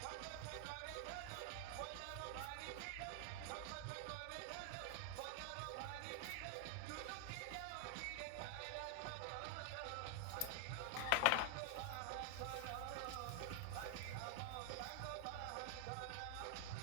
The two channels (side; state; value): both; different; correlation 0.00